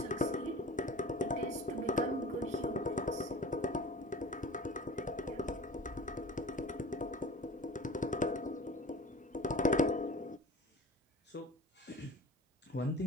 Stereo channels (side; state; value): both; normal; correlation 0.39